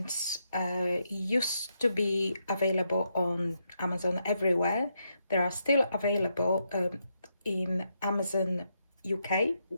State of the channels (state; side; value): inverted; both; correlation -0.80